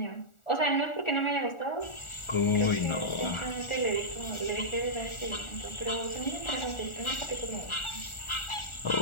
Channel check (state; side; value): late; right; 1.4 ms